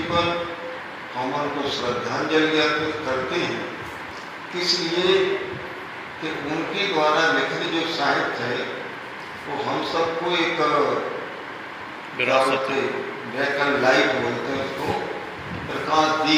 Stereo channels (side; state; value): both; identical; correlation 1.00